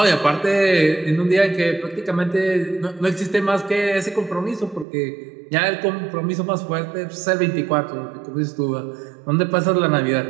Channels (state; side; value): drops out; left; at 4.9 s